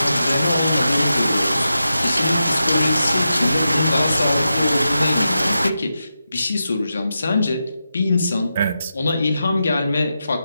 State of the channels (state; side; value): inverted; both; correlation -0.89